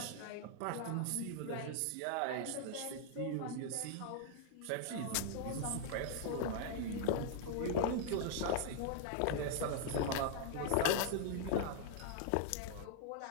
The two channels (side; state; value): both; different; correlation -0.01